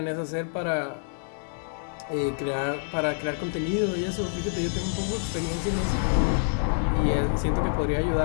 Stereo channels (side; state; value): right; silent; 56 dB below the other